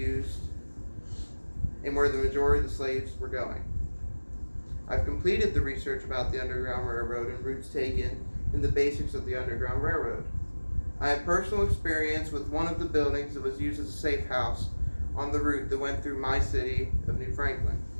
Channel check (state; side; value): inverted; both; correlation -1.00